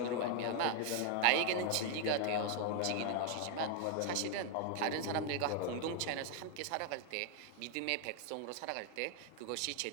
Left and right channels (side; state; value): both; different; correlation 0.00